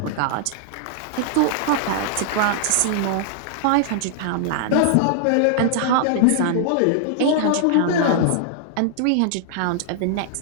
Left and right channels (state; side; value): different; both; correlation -0.01